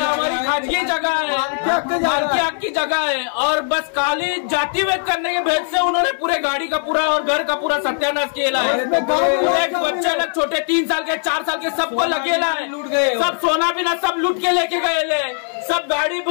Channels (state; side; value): silent; right; digital silence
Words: खाजगी जगह है, मालकी हक की जगह है और बस खाली जाति भेद करने के भेद से उन्होंने पूरे गाड़ी का पूरा और घर का पूरा सत्यानाश किया है। बच्चे लोग छोटे 3 साल के 4 साल के सबको लगेला है, सब सोना बिना सब लूट के लेके गए ले, सब गाड़ी